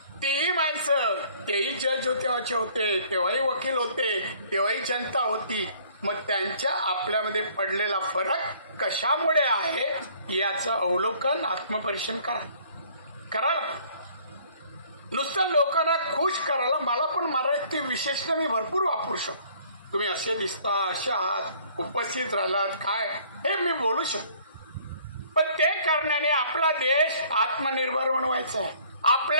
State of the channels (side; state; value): both; inverted; correlation -0.57